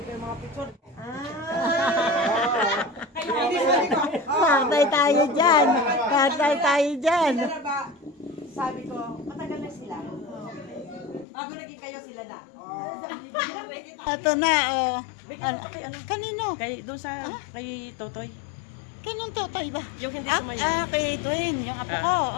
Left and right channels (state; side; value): drops out; right; at 11.2 s